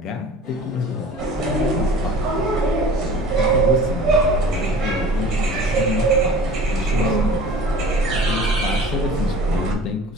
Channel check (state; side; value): normal; both; correlation 0.43